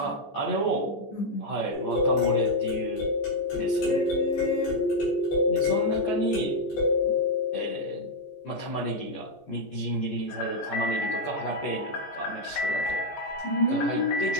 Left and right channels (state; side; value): late; right; 14 ms